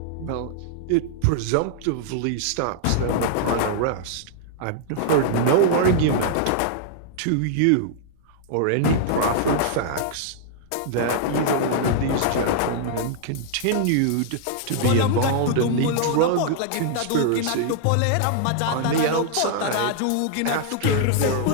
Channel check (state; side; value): different; both; correlation -0.01